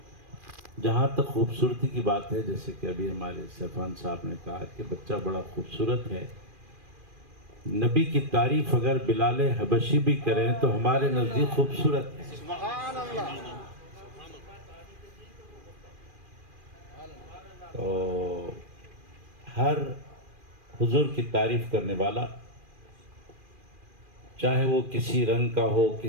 جہاں تک خوبصورتی کی بات ہے، جیسے کہ ابھی ہمارے سیفان صاحب نے کہا کہ بچہ بڑا خوبصورت ہے، نبی کی تعریف اگر بلال حبشی بھی کریں تو ہمارے نزدیک خوبصورت ہے. سبحان اللہ. تو ہر حضور کی تعریف کرنے والا، چاہے وہ کسی رنگ کا ہو،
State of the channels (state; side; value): late; left; 2.4 ms